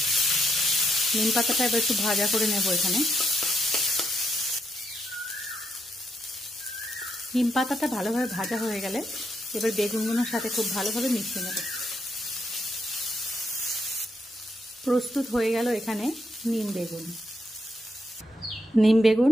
নিম পাতাটা এবার একটু ভাজা করে নেব। এখানে নিম পাতাটা ভালোভাবে ভাজা হয়ে গেলে এবার বেগুনগুলোর সাথে খুব ভালোভাবে মিশিয়ে নেব। প্রস্তুত হয়ে গেল এখানে নিম বেগুন। নিম বেগুন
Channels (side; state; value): both; normal; correlation 0.78